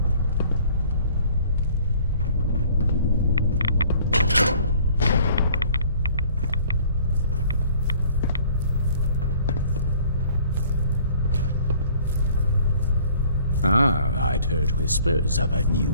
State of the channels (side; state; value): both; inverted; correlation -0.54